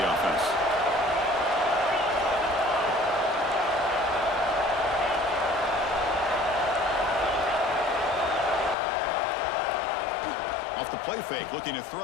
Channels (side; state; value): right; drops out; at 8.8 s